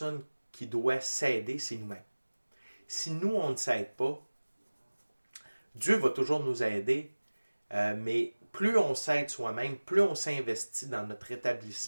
qui doit s'aider, c'est nous-mêmes. Si nous, on ne s'aide pas, Dieu va toujours nous aider, mais plus on s'aide soi-même, plus on s'investit dans notre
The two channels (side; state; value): both; inverted; correlation -1.00